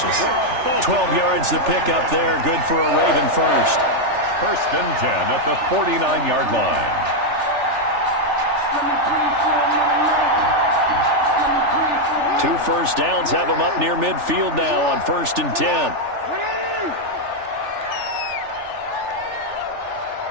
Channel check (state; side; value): late; left; 3.4 ms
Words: 12 yards to pick up there. Good for a Raven first. 1st and 10 at the 49-yard line. Two first downs have them up near midfield now on 1st and 10.